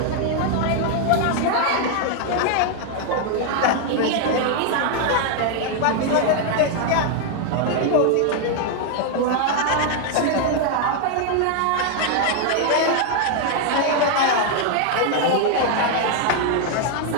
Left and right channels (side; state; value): both; different; correlation 0.00